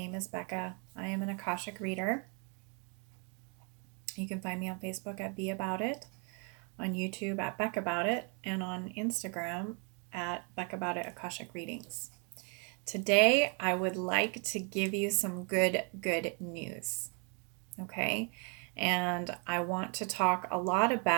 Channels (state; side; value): quieter; left; 36.0 dB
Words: is Becca. I am an Akashic reader. You can find me on Facebook at Be About It, on YouTube at Beck About It, and on Instagram at Beck About It Akashic Readings. Today, I would like to give you some good news. Okay? And I want to talk a lot